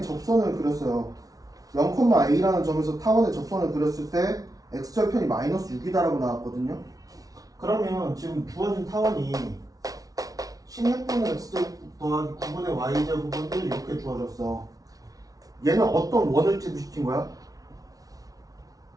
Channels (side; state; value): left; late; 0.18 ms